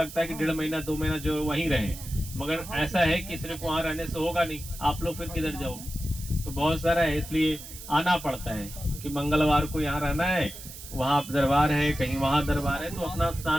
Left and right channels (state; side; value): noise; right; hiss, 13 dB below the sound